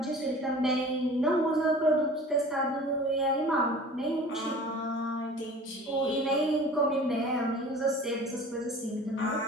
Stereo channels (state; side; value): normal; both; correlation 0.43